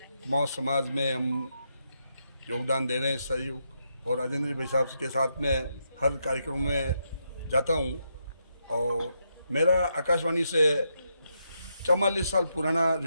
कुमाऊं समाज में हम योगदान दे रहे हैं, सहयोग। और राजेंद्र भाई साहब के साथ में हर कार्यक्रम में जाता हूँ। और मेरा आकाशवाणी से 44 साल पुराना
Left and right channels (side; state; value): both; inverted; correlation -0.81